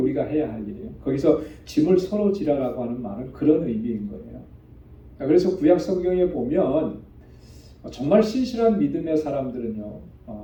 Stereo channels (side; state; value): both; identical; correlation 1.00